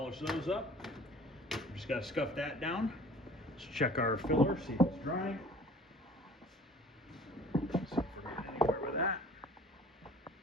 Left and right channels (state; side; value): normal; both; correlation 0.48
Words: those up. Just got to scuff that down. Let's check our filler, see if it's drying. See if we're getting anywhere with that.